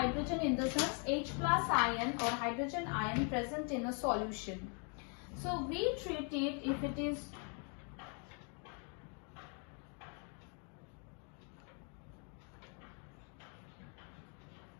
in the sense H plus ion or hydrogen ion present in a solution. So we treat it if it is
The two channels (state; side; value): quieter; right; 39.1 dB